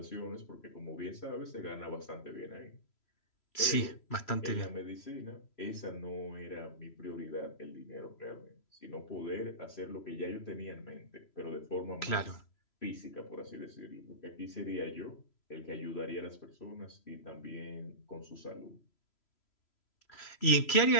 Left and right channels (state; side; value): late; right; 3.0 ms